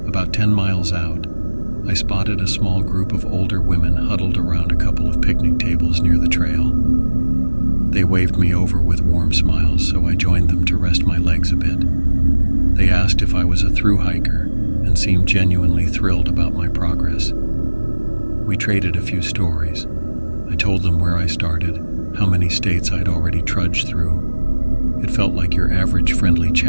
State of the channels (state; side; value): inverted; both; correlation -1.00